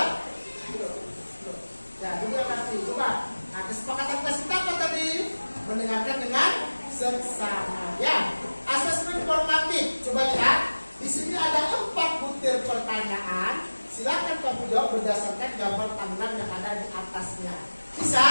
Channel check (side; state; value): both; inverted; correlation -1.00